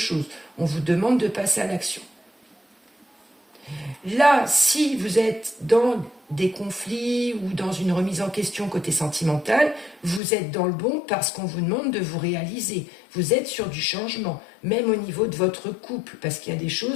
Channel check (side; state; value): right; drops out; at 10.2 s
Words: On vous demande de passer à l'action. Là, si vous êtes dans des conflits ou dans une remise en question côté sentimental, vous êtes dans le bon parce qu'on vous demande de vous réaliser. Vous êtes sur du changement, même au niveau de votre couple, parce qu'il y a des